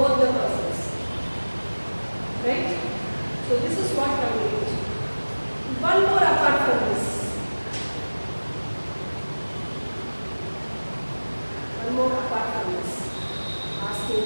the persons. Right? So, this is what communication. One more apart from this. One more apart from this. Asking,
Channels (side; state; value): both; inverted; correlation -1.00